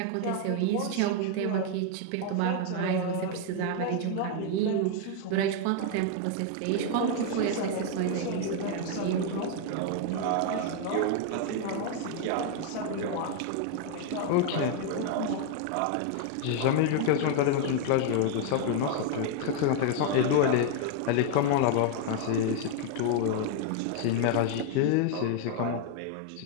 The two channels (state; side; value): different; both; correlation 0.00